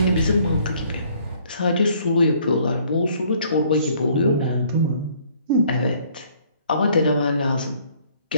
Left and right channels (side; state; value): both; inverted; correlation -0.61